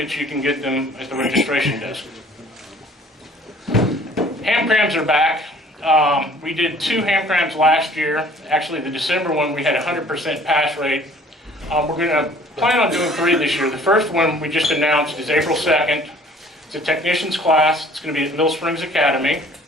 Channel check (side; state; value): both; normal; correlation 0.53